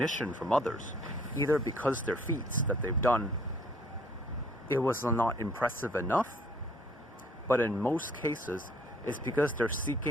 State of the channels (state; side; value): normal; both; correlation 0.60